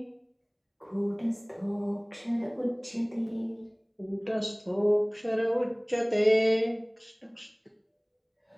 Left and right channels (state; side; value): identical; both; correlation 1.00